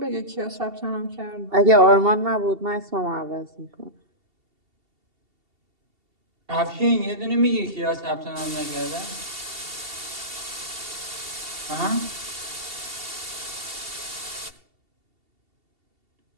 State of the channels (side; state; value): left; late; 2.7 ms